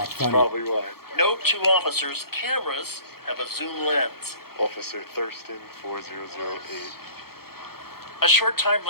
funny. Probably why. Note to officers, cameras have a zoom lens. Officer Thurston 4008. A short time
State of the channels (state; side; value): late; right; 0.94 ms